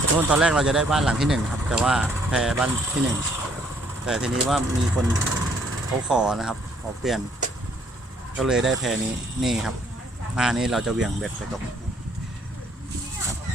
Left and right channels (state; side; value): normal; both; correlation 0.65